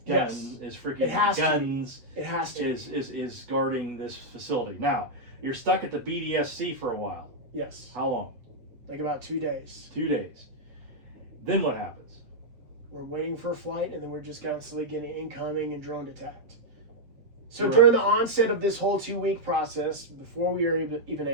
Yes. is freaking It has guns to be. It has to. is guarding this facility. Now, you're stuck at the BDSC for a while. Yes. How long? Like about 2 days. 2 days. Then what happens? We're waiting for a flight, and then we're just constantly getting incoming and drone attacked. So Right. during the onset of this whole 2-week process, before we were even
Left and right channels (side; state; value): left; late; 7.7 ms